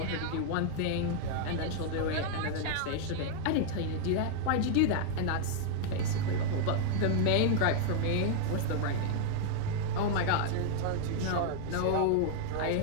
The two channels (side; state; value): both; different; correlation 0.00